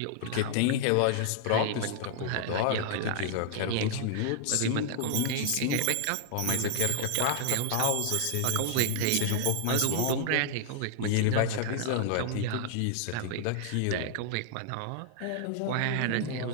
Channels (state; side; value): different; both; correlation -0.01